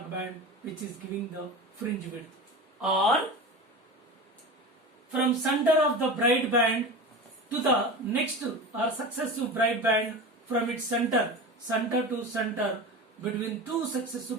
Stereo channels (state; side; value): normal; both; correlation 0.30